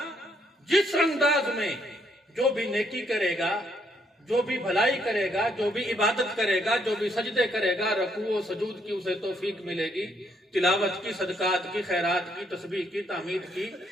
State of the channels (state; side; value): normal; both; correlation 0.72